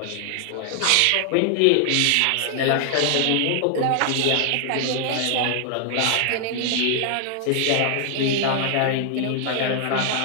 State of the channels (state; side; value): different; both; correlation 0.00